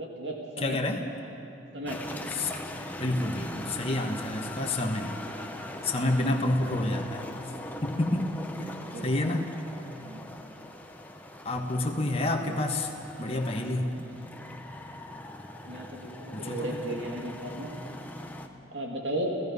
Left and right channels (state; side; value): normal; both; correlation 0.61